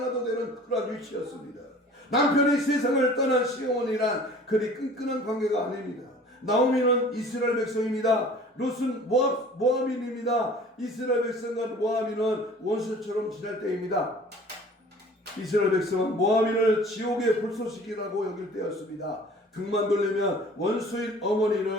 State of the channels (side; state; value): both; normal; correlation 0.47